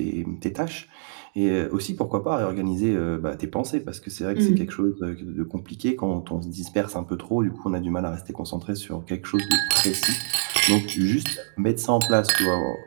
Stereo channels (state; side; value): silent; left; digital silence